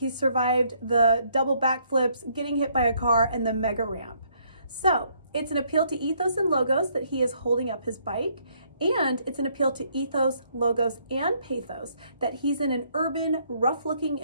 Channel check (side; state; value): both; inverted; correlation -0.68